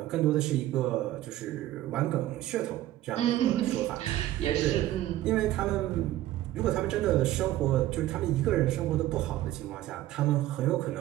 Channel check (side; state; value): left; quieter; 14.6 dB